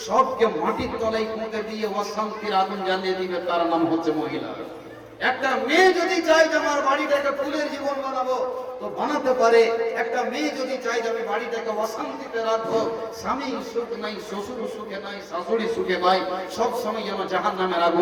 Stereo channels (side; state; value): both; identical; correlation 1.00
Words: সবকে মাটির তলায় পুঁতে দিয়ে অশান্তির আগুন জ্বালিয়ে দিবে, তার নাম হচ্ছে মহিলা। একটা মেয়ে যদি চায় যে আমার বাড়িটাকে ফুলের জীবন বানাবো তো বানাতে পারে। একটা মেয়ে যদি চায় যে আমি বাড়িটাকে অশান্তিতে রাখবো, স্বামী সুখ নাই, শ্বশুর সুখে নাই, শাশুড়ি সুখে নাই, সব সময় যেন জাহান্নামের